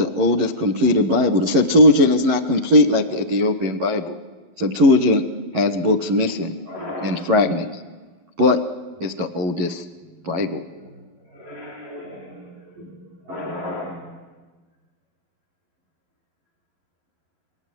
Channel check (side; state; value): left; late; 12 ms